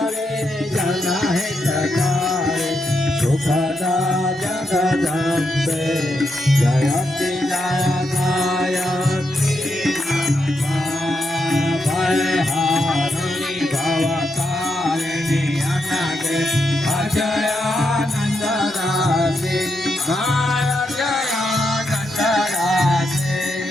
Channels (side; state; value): both; normal; correlation 0.83